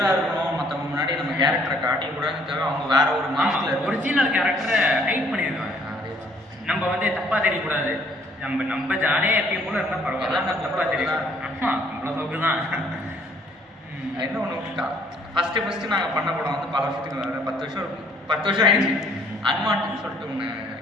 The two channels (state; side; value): normal; both; correlation 0.62